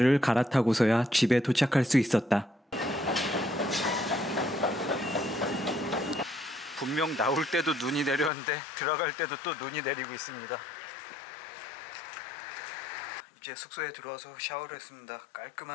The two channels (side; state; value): right; drops out; at 8.3 s